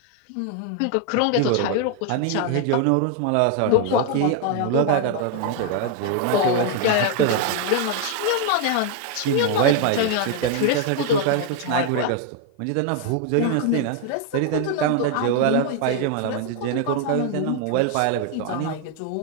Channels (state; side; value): different; both; correlation 0.01